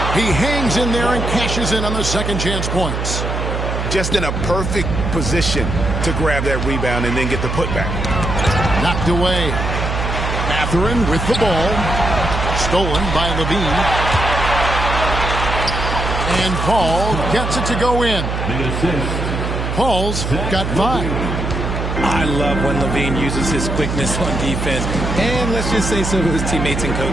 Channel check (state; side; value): noise; right; hum, 3 dB below the sound